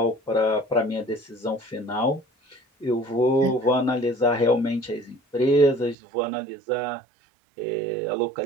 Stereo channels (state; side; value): drops out; left; at 6.0 s